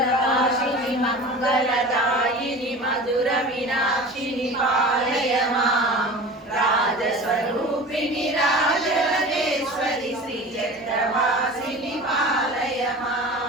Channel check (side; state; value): both; normal; correlation 0.36